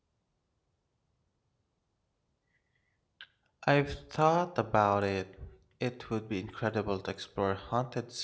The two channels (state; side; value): identical; both; correlation 1.00